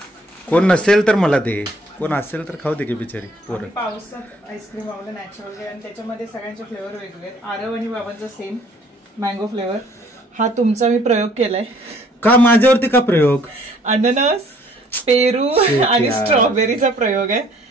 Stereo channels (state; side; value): normal; both; correlation 0.59